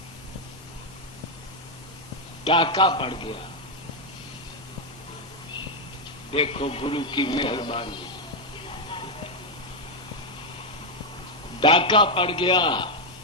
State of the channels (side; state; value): both; normal; correlation 0.01